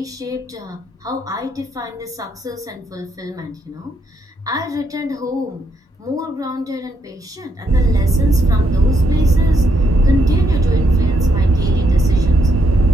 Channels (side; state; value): both; normal; correlation 0.76